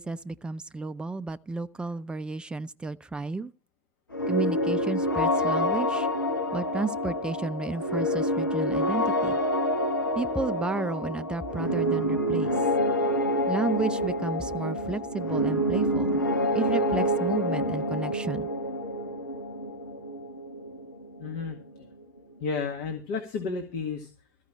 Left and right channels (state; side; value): normal; both; correlation 0.03